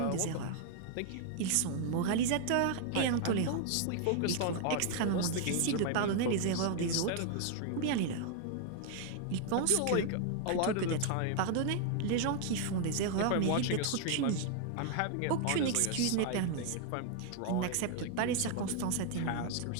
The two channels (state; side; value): different; both; correlation 0.00